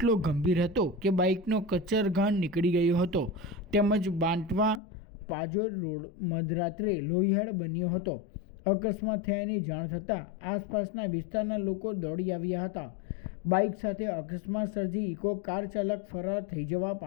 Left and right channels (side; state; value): right; drops out; at 4.8 s